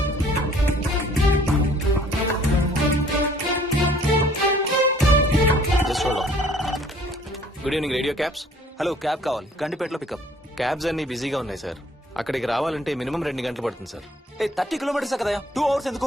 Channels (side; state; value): both; normal; correlation 0.57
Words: Good evening radio cabs. Hello, cab కావాలి. గండిపేటలో పికప్. క్యాబ్స్ అన్ని బిజీగా ఉన్నాయి సార్. అక్కడికి రావాలంటే మినిమం 2 గంటలు పడుతుంది సార్. 30 కిలోమీటర్స్ కదా, 2 అవర్స్